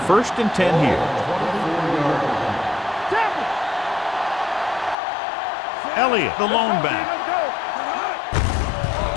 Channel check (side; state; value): right; drops out; at 5.0 s